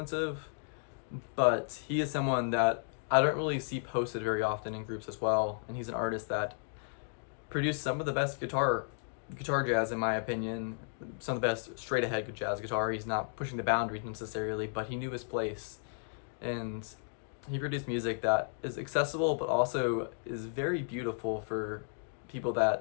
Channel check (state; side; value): silent; right; digital silence